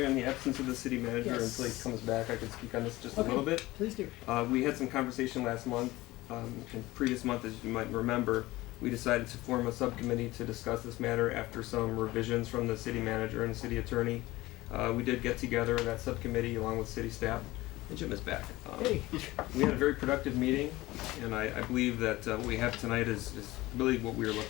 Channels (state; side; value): quieter; right; 18.7 dB